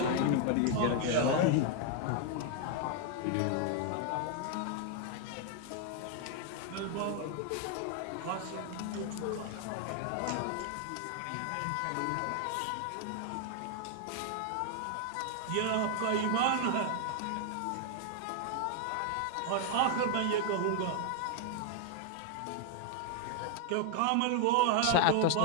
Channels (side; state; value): both; different; correlation 0.00